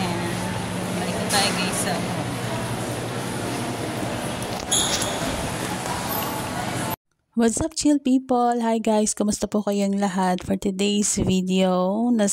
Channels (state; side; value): identical; both; correlation 1.00